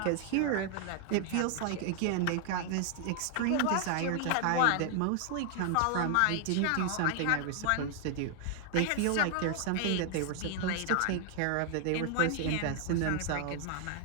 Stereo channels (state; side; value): different; both; correlation 0.00